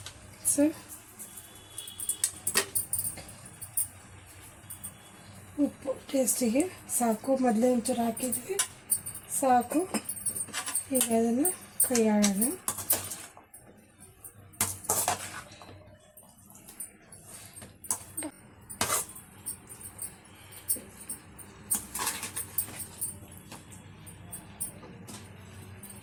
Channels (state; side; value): identical; both; correlation 1.00